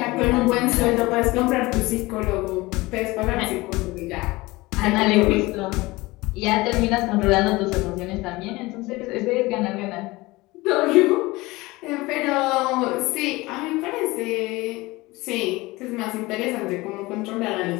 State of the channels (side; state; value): right; quieter; 21.4 dB